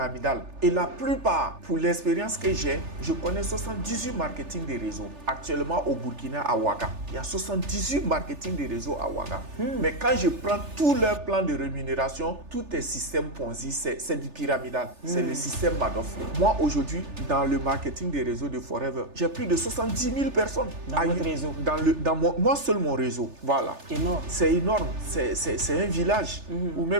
Et la plupart, pour l'expérience que j'ai, je connais 78 marketing des réseaux. Actuellement au Burkina, à Ouaga, il y a 78 marketing des réseaux à Ouaga. Mais quand je prends tous leurs plans de rémunération, tout est système Ponzi, c'est du pyramidal. C'est le système Madoff. Moi aujourd'hui, dans le marketing des réseaux de Forever, j'ai plus de 70 000 personnes. Dans votre réseau. Moi seul mon réseau. Voilà. Énorme. C'est énorme. C'est un village ou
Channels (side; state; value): left; late; 3.4 ms